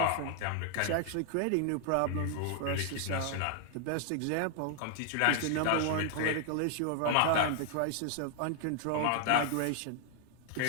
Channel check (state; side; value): different; both; correlation 0.00